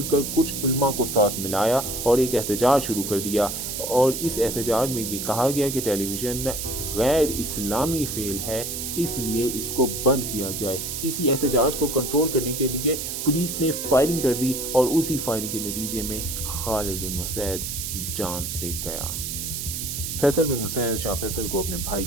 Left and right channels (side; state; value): right; noise; hiss, 4 dB below the sound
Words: کر کچھ علماء کو ساتھ ملایا اور ایک احتجاج شروع کر دیا، اور اس احتجاج میں یہ کہا گیا کہ ٹیلی ویژن غیر اسلامی فعل ہے، اس لیے اس کو بند کیا جائے۔ اسی احتجاج کو کنٹرول کرنے کے لیے پولیس نے فائرنگ کر دی اور اسی فائرنگ کے نتیجے میں خالد بن مسعود جان سے گیا۔ فیصل بن مسعود شاہ فیصل کو اپنے بھائی